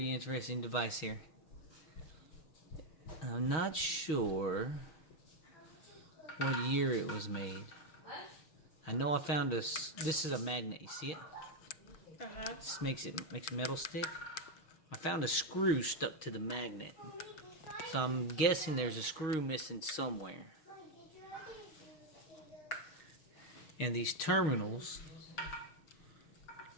interesting device here. I'm not sure what year it was made. I know I found this. This is a magnet. You see it? This makes metal stick. I found a screw stuck to the magnet. So I'm guessing there's a screw missing somewhere. And these terminals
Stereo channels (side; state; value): right; late; 6.3 ms